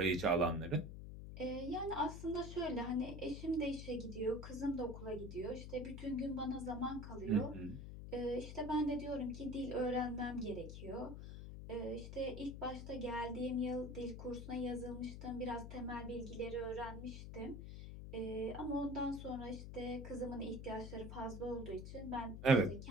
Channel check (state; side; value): noise; left; hum, 9 dB below the sound